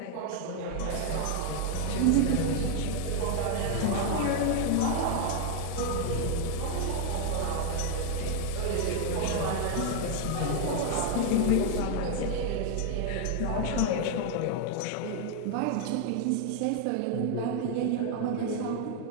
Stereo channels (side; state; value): both; different; correlation 0.00